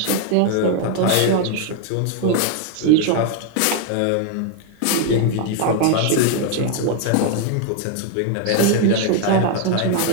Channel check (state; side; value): different; both; correlation 0.00